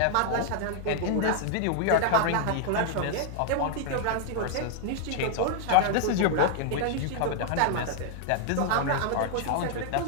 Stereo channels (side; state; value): both; different; correlation 0.00